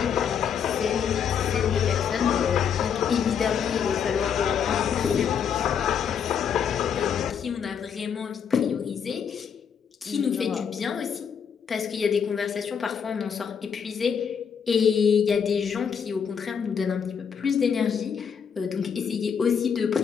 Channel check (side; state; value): right; quieter; 7.3 dB